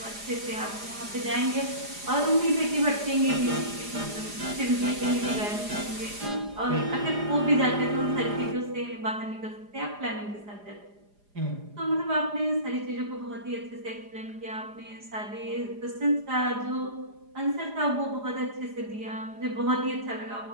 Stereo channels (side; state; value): left; late; 4.9 ms